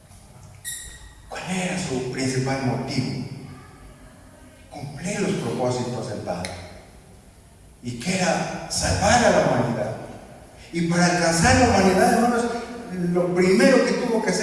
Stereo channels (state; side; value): identical; both; correlation 1.00